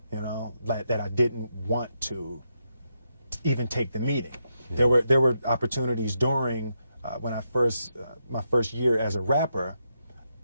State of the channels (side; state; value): both; inverted; correlation -0.83